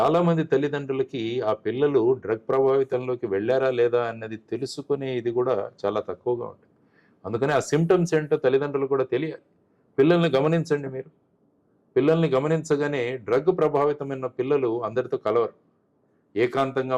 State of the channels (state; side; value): identical; both; correlation 1.00